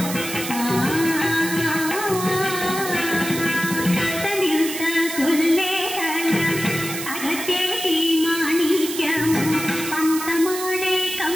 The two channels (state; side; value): noise; right; hiss, 7 dB below the sound